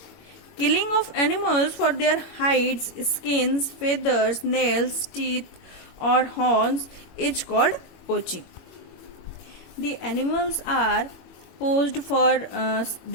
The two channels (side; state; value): right; late; 22 ms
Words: Killing of animals for their hides, skins, feathers, nails, teeth, or horns is called poaching. The animals are poached for